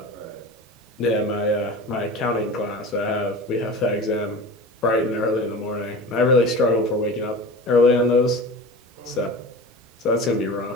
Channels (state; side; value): normal; both; correlation 0.34